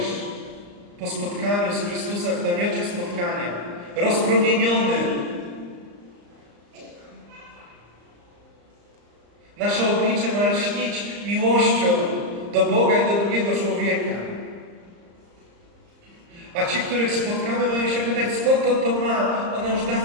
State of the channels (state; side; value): late; left; 34 ms